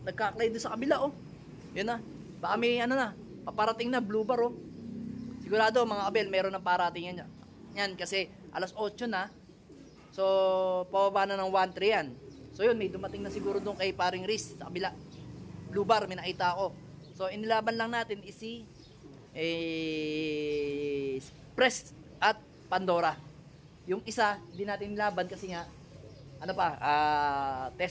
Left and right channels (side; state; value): both; identical; correlation 1.00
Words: nagkaklay doon sa kabila, Yun na, baka may paparating na, blue bar, Sigurado mga abel, meron ng parating yan kasi alas 8 na. So, pababa na ng 1-3 yan. So yun, may dumating na siguro doon kay paring Riz sa kabila. Blue bar, may nakita ako. So, inilaban lang natin si Press at Pandora. Yung isa, hindi natin nilaban kasi nga,